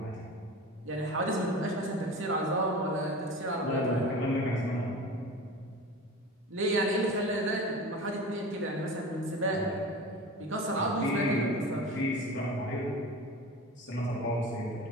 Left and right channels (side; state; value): both; normal; correlation 0.34